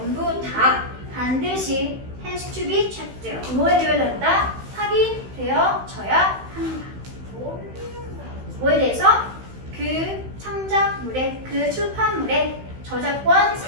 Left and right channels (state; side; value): late; left; 16 ms